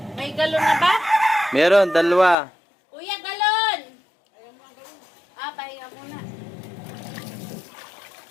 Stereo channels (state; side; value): drops out; right; at 2.4 s